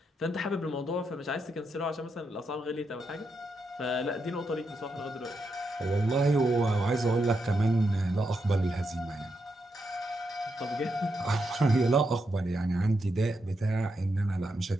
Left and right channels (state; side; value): normal; both; correlation 0.83